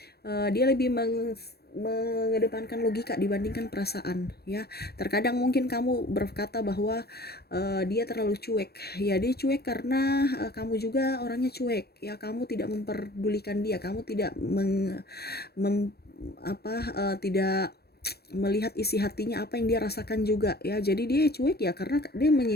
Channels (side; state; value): right; late; 0.47 ms